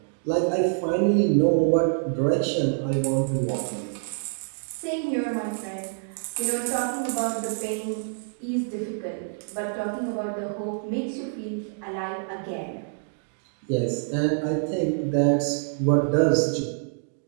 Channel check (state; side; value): silent; left; digital silence